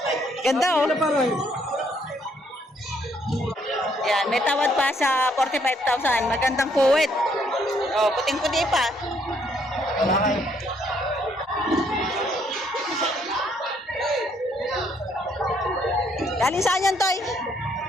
Ganda, oh. Yan, may tawad pa sa 45,000. Magandang puwet. Oh, puting-puti pa. Galing saan yan, Toy?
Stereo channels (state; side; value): normal; both; correlation 0.69